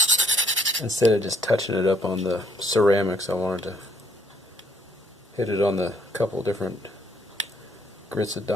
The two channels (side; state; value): both; normal; correlation 0.67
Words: Instead of just touching it up on the ceramics, I wanted to hit it on the couple different grits of